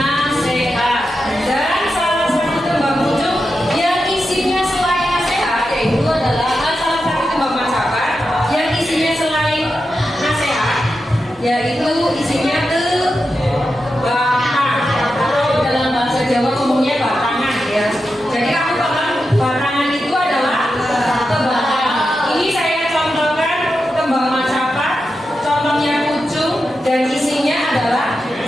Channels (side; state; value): both; normal; correlation 0.89